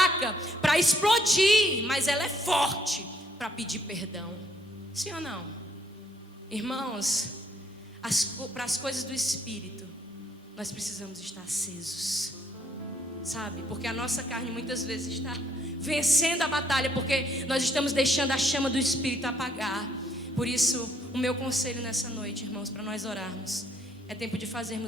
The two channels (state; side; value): normal; both; correlation 0.67